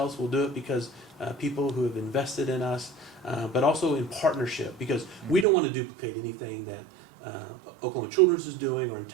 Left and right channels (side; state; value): left; drops out; at 5.5 s